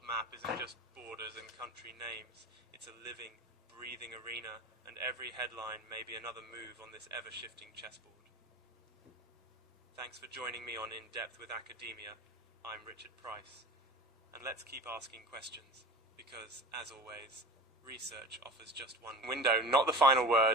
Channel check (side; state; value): both; normal; correlation 0.35